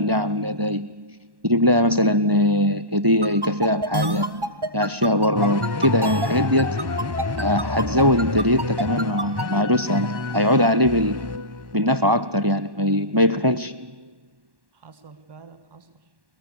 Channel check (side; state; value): left; late; 1.1 ms